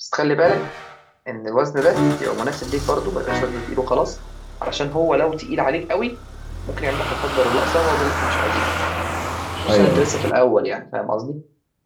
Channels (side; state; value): both; identical; correlation 1.00